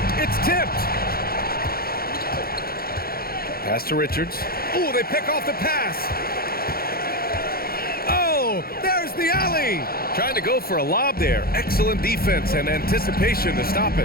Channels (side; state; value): right; late; 0.44 ms